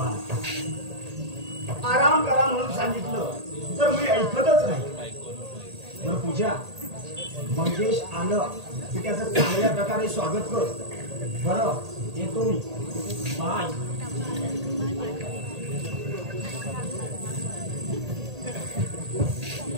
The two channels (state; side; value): late; left; 1.8 ms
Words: आराम करा म्हणून सांगितलं तर मी ऐकतच नाही. बरं पूजा, मंगेश आलं की त्याचं चांगल्या प्रकारे स्वागत कर. बरं, येतो मी. बाय.